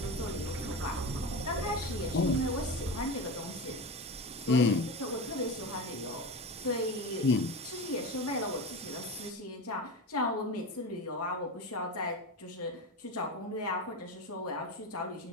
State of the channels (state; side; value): normal; both; correlation 0.24